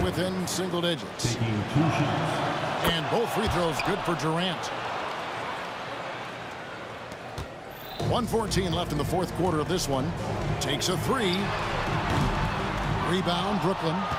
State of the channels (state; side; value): identical; both; correlation 1.00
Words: within single digits. And both free throws good for Durant. 1:14 left in the fourth quarter of this one. Takes a three. Rebound, Brooklyn.